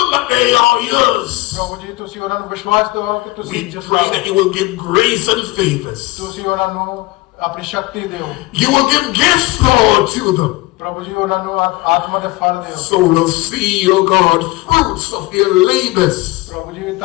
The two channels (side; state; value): right; quieter; 20.8 dB